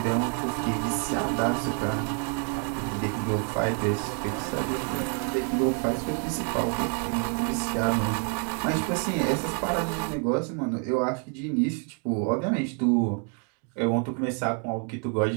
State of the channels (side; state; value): left; quieter; 39.6 dB